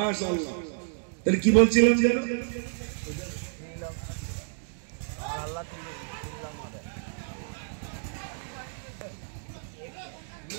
তাহলে কি বলছিলাম যেন?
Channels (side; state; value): left; silent; digital silence